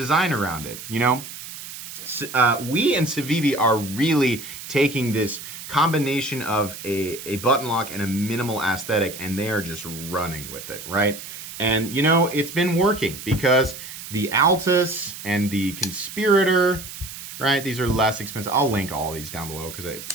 around it, you know? WE and Civivi are really taking this combination of a button lock and a minimal aesthetic, and they are just running with it, right? And, you know, it's been working because the Altus and the Conspirator, right? These are less expensive. I'll link all these down below because,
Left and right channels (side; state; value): right; noise; hiss, 12 dB below the sound